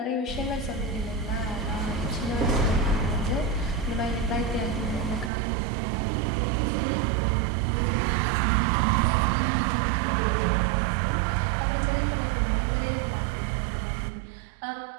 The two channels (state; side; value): drops out; left; at 5.3 s